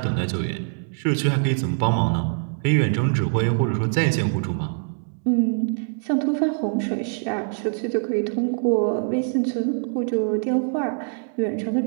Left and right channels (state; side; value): silent; left; digital silence